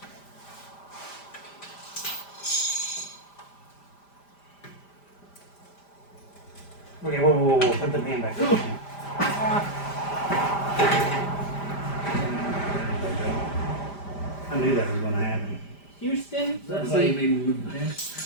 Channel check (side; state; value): right; late; 5.0 ms